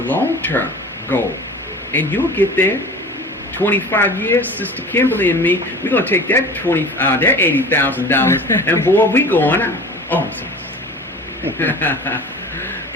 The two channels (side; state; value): both; normal; correlation 0.39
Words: goal, and you'll get there. 25 years, Sister Kimberly and me, we're gonna take that that $80,000, and boy, we going out. Oh, I'm sorry.